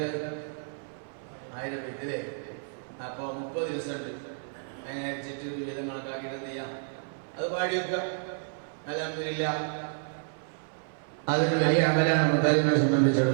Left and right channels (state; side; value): silent; left; 56 dB below the other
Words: 1000 വെയിറ്റല്ലേ? അപ്പൊ 30 ദിവസം ഉണ്ട്. അങ്ങനെ അരിച്ചിട്ട് വീതം കണക്കാക്കിയിട്ട് എന്ത് ചെയ്യാം? അത് പാടി വെക്കുക. അൽഹംദുലില്ലാ, അതൊരു വലിയ അമലാണ് മുത്താലിബിനെ